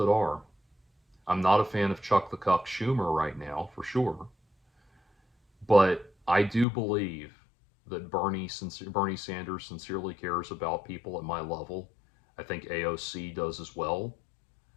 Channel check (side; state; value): right; drops out; at 6.7 s